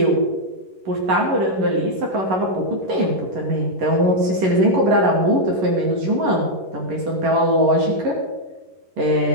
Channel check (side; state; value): left; late; 11 ms